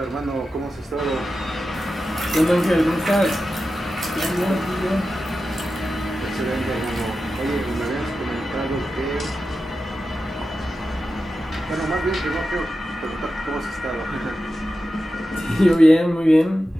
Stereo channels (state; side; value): normal; both; correlation 0.92